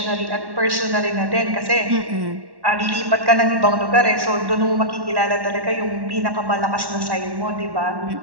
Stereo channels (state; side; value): late; left; 1.1 ms